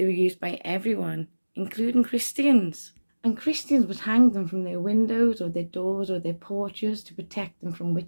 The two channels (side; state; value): both; inverted; correlation -1.00